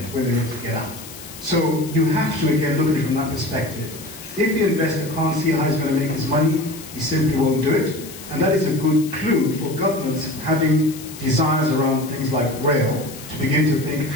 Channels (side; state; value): left; noise; hiss, 15 dB below the sound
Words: when they're ready to get out. So you have to, again, look at it from that perspective. If the investor can't see how he's going to make his money, he simply won't do it. And that is a good clue for governments having desires around things like rail to begin to think